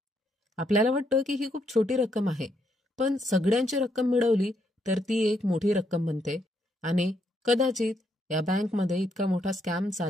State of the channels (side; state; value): both; normal; correlation 0.75